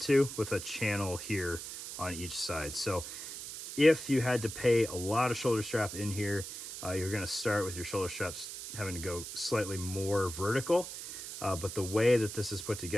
to, with a channel here on each side. So if you had to pay a lot of shoulder strap in here, you're gonna start with your shoulder straps having to go slightly more vertical. But the way that this is put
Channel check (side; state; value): right; noise; hiss, 9 dB below the sound